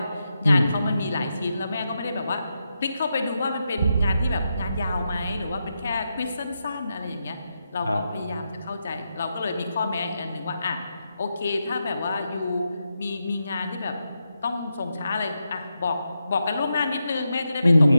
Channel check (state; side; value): inverted; both; correlation -0.86